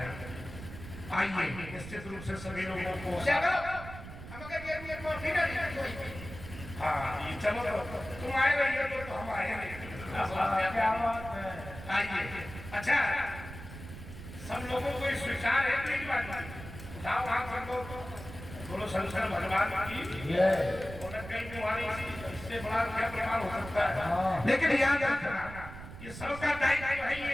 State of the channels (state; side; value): noise; right; rumble, 12 dB below the sound